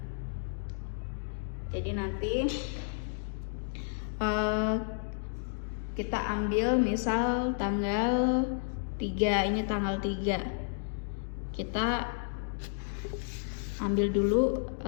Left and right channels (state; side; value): silent; right; digital silence